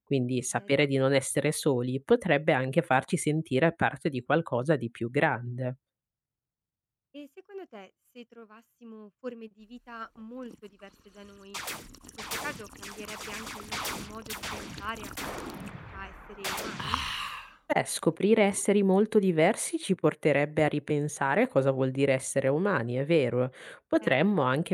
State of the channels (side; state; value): both; identical; correlation 1.00